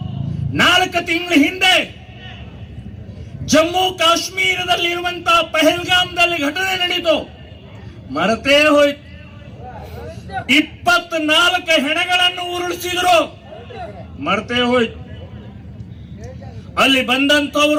4 ತಿಂಗಳ ಹಿಂದೆ ಜಮ್ಮು ಕಾಶ್ಮೀರದಲ್ಲಿ ಇರುವಂತಹ ಪಹಲ್ಗಾಮ್ದಲ್ಲಿ ಘಟನೆ ನಡೀತು, ಮರೆತೇ ಹೋಯ್ತು. 24 ಹೆಣಗಳನ್ನು ಉರುಳಿಸಿದ್ರು, ಮರೆತೇ ಹೋಯ್ತು. ಅಲ್ಲಿ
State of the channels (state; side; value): identical; both; correlation 1.00